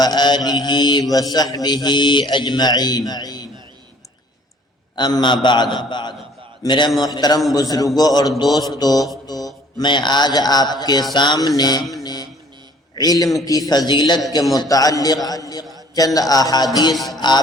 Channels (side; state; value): both; normal; correlation 0.55